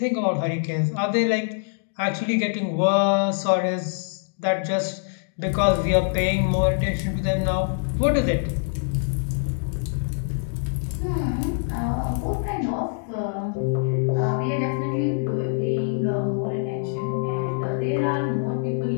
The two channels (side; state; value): right; silent; digital silence